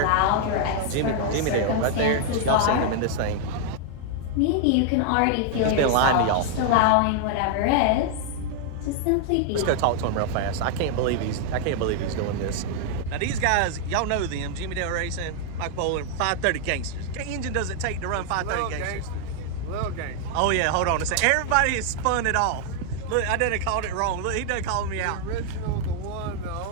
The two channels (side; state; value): both; different; correlation 0.00